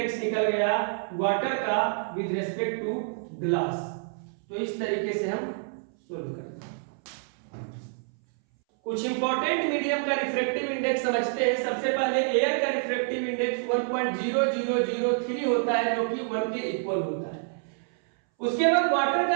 निकल गया वाटर का विद रिस्पेक्ट टू ग्लास। तो इस तरीके से हम सोल्व करते हैं। कुछ इंपॉर्टेंट मीडियम का रिफ्रैक्टिव इंडेक्स समझते हैं। सबसे पहले एयर का रिफ्रैक्टिव इंडेक्स 1.0003 होता है जो कि 1 के इक्वल होता है। उसके बाद वाटर का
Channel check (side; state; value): left; silent; 60 dB below the other